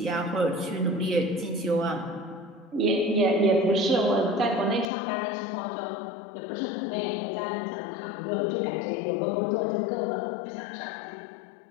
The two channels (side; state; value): right; drops out; at 4.9 s